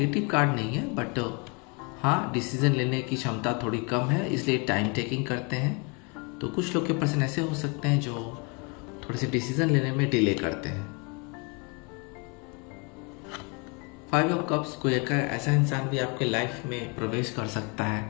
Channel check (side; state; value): right; quieter; 31.7 dB